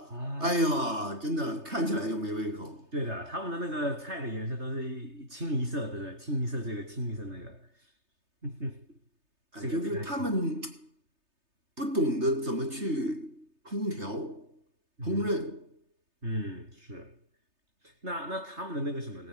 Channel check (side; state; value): left; late; 3.3 ms